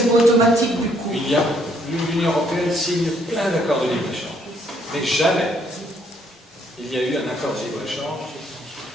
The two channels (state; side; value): normal; both; correlation 0.68